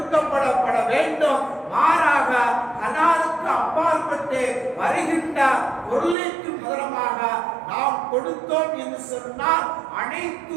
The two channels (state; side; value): drops out; left; at 6.2 s